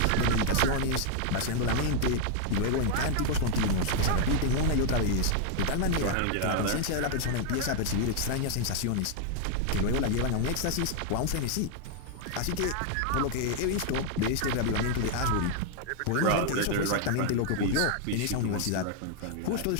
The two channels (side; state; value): both; different; correlation 0.00